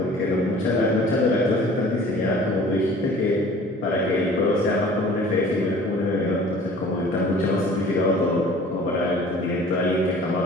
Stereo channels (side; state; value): both; normal; correlation 0.48